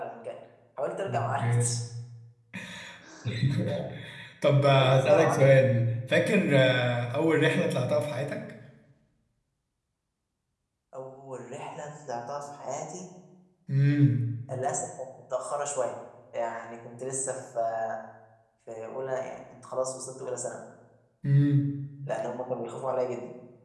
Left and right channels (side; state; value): both; identical; correlation 1.00